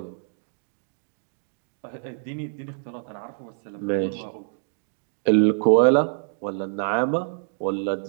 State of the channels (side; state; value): left; silent; digital silence